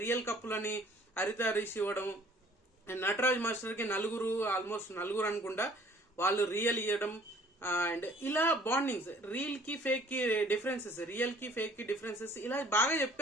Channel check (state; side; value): normal; both; correlation 0.55